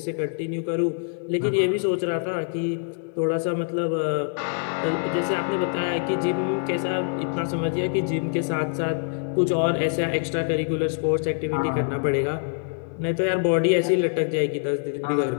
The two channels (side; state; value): right; silent; digital silence